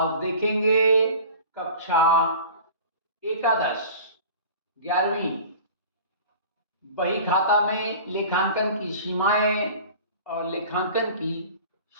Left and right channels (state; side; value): inverted; both; correlation -0.41